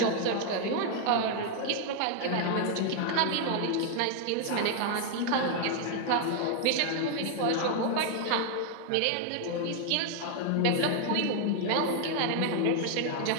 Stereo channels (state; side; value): different; both; correlation 0.00